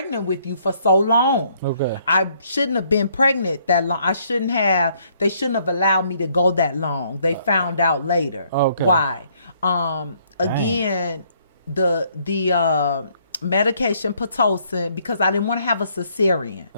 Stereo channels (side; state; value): both; inverted; correlation -0.67